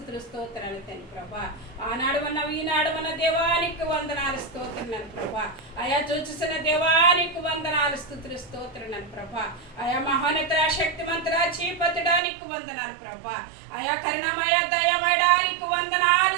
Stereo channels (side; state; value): left; drops out; at 12.2 s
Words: స్తోత్రాలు తండ్రి ప్రభా. ఆనాడు ఉన్నావు ఈనాడు ఉన్న దేవానికి వందనాలు స్తోత్రాలు ప్రభా. అయా చూచుసిన దేవానికి వందనాలు స్తుతులు స్తోత్రాలు ప్రభా. అయా మహోన్నత శక్తిమంతుడా చీపతుడా నీకు వందనాలు ప్రభా. అయా కరుణమయ దయమయడానికి